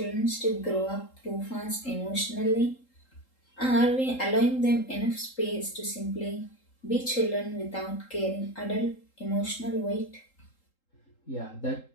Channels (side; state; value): right; late; 3.8 ms